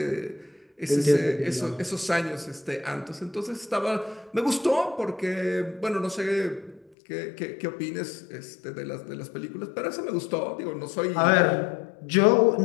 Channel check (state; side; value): drops out; right; at 6.9 s